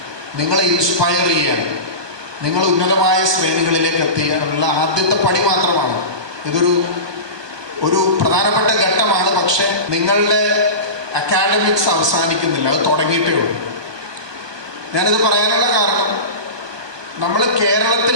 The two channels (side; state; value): left; late; 1.2 ms